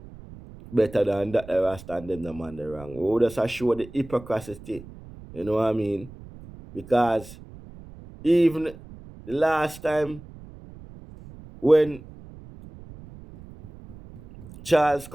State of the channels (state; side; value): noise; right; rumble, 18 dB below the sound